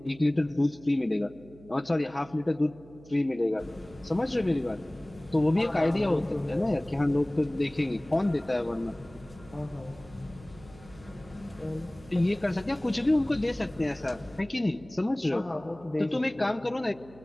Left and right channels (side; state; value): right; noise; hum, 22 dB below the sound